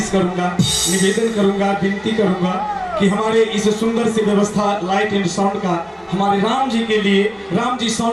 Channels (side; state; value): both; identical; correlation 1.00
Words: करूंगा, निवेदन करूंगा, विनती करूंगा कि हमारे इस सुंदर सी व्यवस्था लाइट एंड साउंड का हमारे राम जी के लिए, राम जी